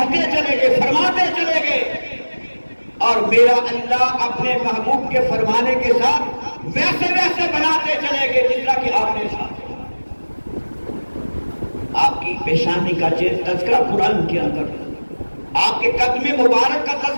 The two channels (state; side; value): inverted; both; correlation -1.00